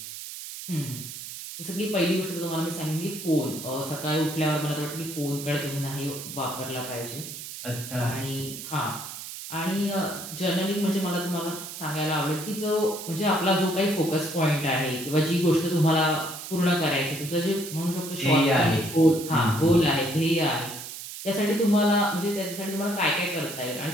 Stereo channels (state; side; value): noise; right; hiss, 10 dB below the sound